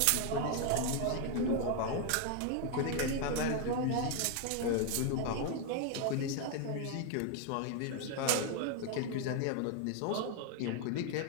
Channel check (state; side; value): different; both; correlation 0.01